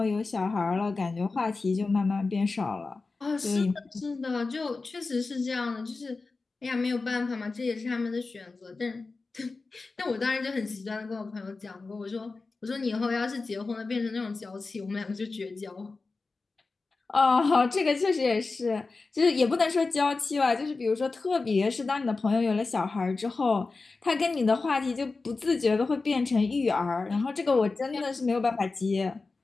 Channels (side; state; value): right; quieter; 3.9 dB